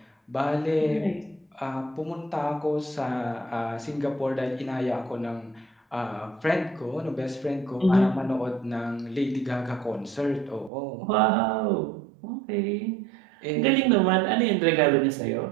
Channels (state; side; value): drops out; left; at 10.7 s